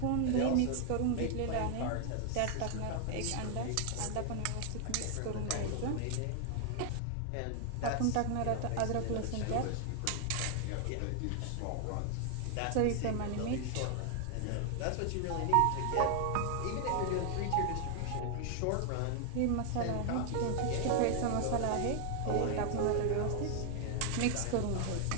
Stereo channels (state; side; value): different; both; correlation 0.00